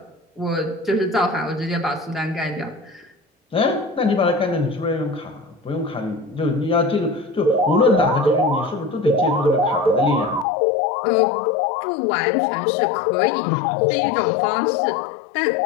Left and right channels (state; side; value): drops out; right; at 10.5 s